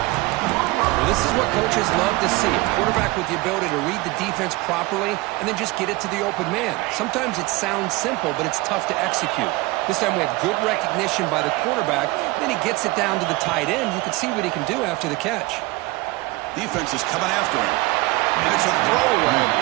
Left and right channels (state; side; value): quieter; left; 21.7 dB